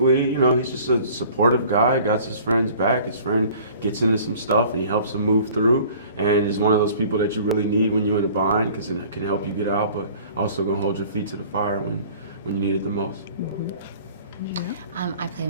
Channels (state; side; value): inverted; both; correlation -0.49